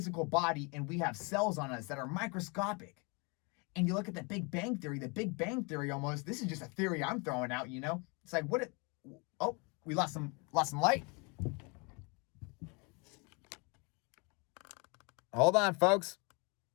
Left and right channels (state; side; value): quieter; right; 31.2 dB